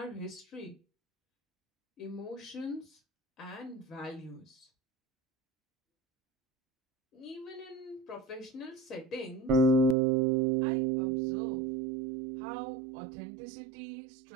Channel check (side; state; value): left; drops out; at 10.0 s